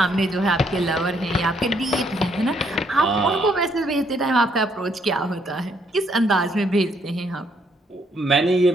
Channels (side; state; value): both; normal; correlation 0.71